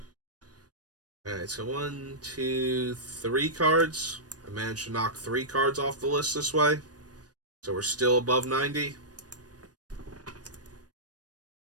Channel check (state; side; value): late; left; 0.69 ms